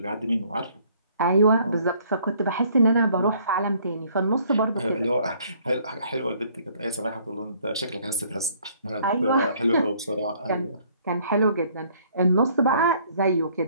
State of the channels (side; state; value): both; inverted; correlation -0.62